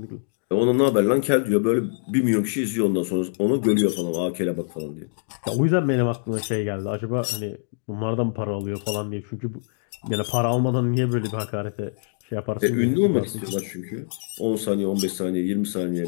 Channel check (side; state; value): right; silent; digital silence